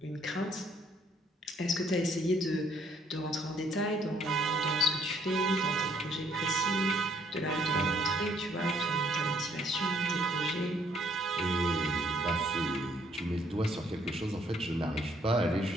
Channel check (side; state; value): both; normal; correlation 0.65